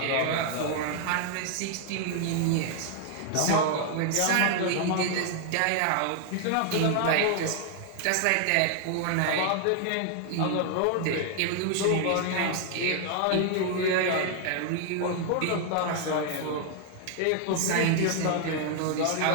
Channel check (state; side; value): different; both; correlation 0.00